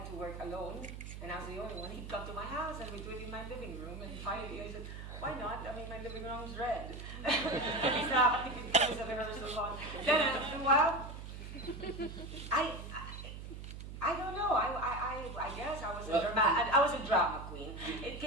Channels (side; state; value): right; noise; hum, 10 dB below the sound